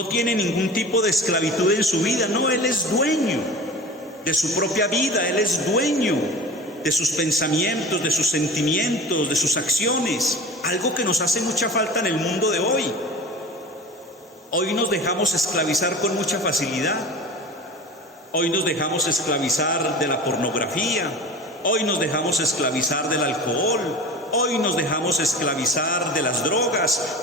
tiene ningún tipo de esclavitud en su vida, no, él es dueño de su propia vida, él es dueño de sus pensamientos, de sus sentimientos, de sus acciones, algo que nos hace mucha falta en el mundo de hoy. Hoy nos dejamos esclavizar con mucha facilidad, hoy nos dejamos esclavizar de la pornografía, hoy nos dejamos esclavizar del alcohol, hoy nos dejamos esclavizar de las drogas,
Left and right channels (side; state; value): both; normal; correlation 0.34